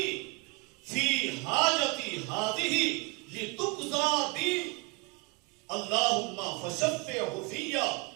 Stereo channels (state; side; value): quieter; left; 28.0 dB